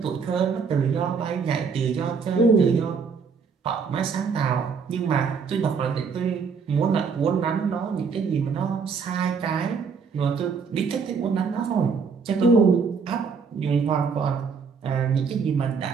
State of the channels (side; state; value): left; quieter; 5.6 dB